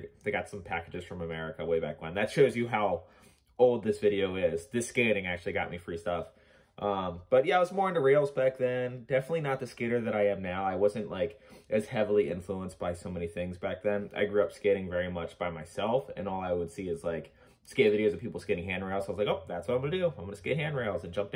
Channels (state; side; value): identical; both; correlation 1.00